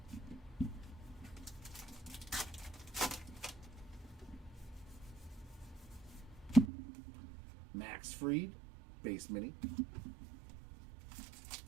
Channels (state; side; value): drops out; left; at 6.7 s